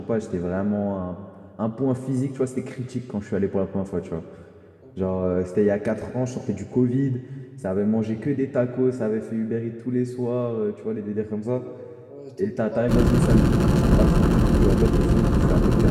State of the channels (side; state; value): both; identical; correlation 1.00